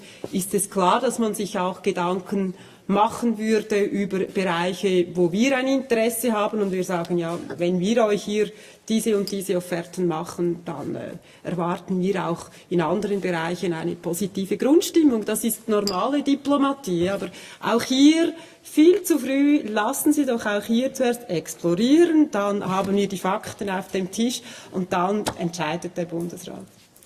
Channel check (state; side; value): identical; both; correlation 1.00